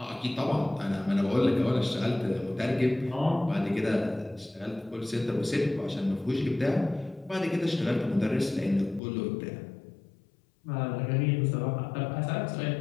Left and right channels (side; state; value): right; drops out; at 9.0 s